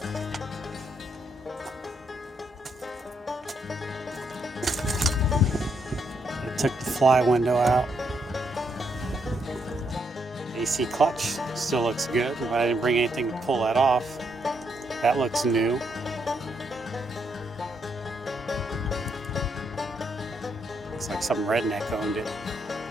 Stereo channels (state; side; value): normal; both; correlation 0.77